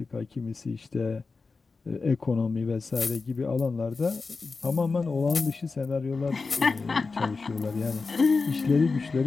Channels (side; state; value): right; quieter; 4.2 dB